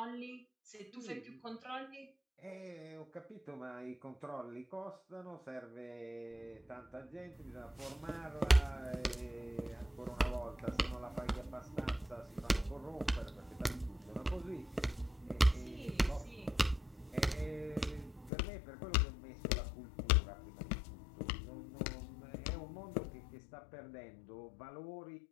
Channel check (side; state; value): right; drops out; at 18.3 s